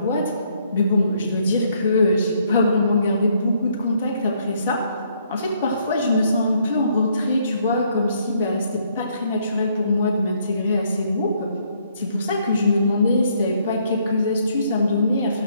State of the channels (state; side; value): inverted; both; correlation -0.69